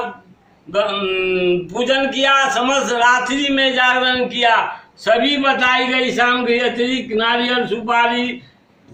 पूजन किया, समस्त रात्रि में जागरण किया। सभी बताई गई शाम के अतिरिक्त नारियल सुपारी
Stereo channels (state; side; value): identical; both; correlation 1.00